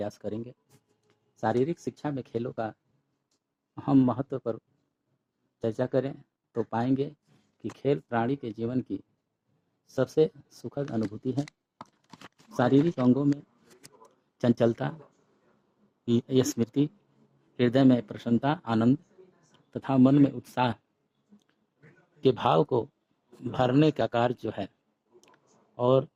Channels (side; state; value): both; identical; correlation 1.00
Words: करेंगे। शारीरिक शिक्षा में खेलों का अहम महत्व पर चर्चा करें तो पाएंगे कि खेल प्राणी के जीवन की सबसे सुखद अनुभूति है। शारीरिक अंगों में चंचलता, स्मृति, हृदय में प्रसन्नता, आनंद तथा मन में उत्साह के भाव को भरने का कार्य जो है और